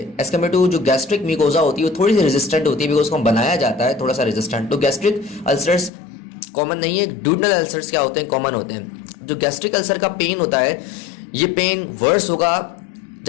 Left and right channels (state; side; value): drops out; right; at 5.9 s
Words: एज कम्पेयर टू जो गैस्ट्रिक म्यूकोजा होती है वो थोड़ी सी रेजिस्टेंट होती है, बिकॉज उसको बनाया जाता है थोड़ा सा रेजिस्टेंट। तो गैस्ट्रिक अल्सर्स कॉमन नहीं है, डूडनल अल्सर्स क्या होते हैं, कॉमन होते हैं। जो गैस्ट्रिक अल्सर का पेन होता है, ये पेन वर्स होगा